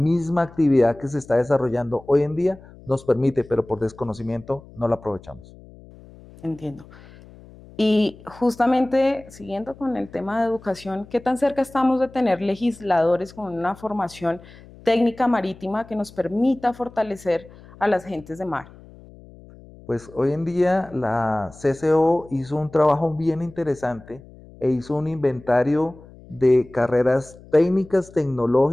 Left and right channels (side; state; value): left; noise; hum, 21 dB below the sound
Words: actividad que se está desarrollando hoy en día nos permite, pero por desconocimiento no la aprovechamos. Entiendo. Y justamente siguiendo con el tema de educación, ¿qué tan cerca estamos de tener legisladores con una formación técnica marítima que nos permita fortalecer a las gentes de mar? Pues hoy en día la CCO hizo un trabajo bien interesante e hizo un inventario de carreras técnicas,